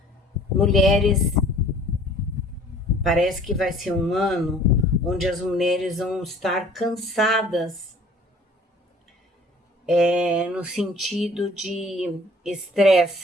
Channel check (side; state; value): both; normal; correlation 0.52